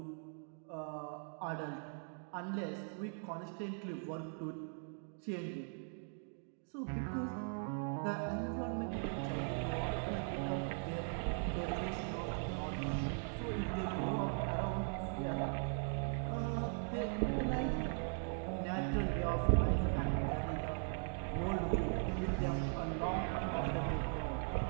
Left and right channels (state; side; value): silent; left; 51 dB below the other